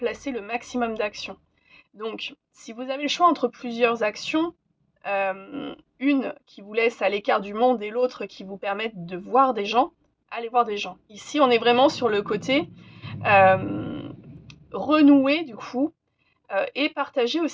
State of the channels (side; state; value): both; identical; correlation 1.00